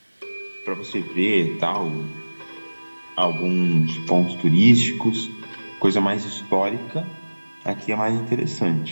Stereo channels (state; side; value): inverted; both; correlation -1.00